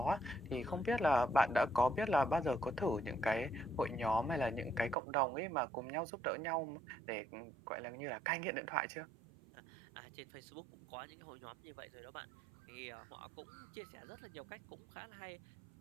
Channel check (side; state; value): left; drops out; at 5.0 s